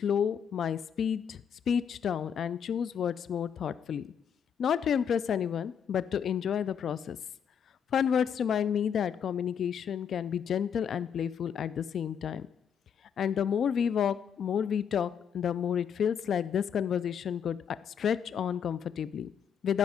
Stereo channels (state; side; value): quieter; right; 7.8 dB